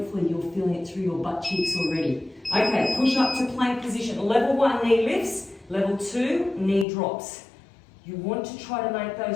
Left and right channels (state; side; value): drops out; right; at 6.9 s